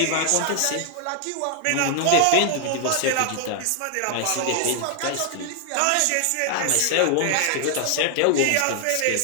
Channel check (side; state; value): both; different; correlation 0.00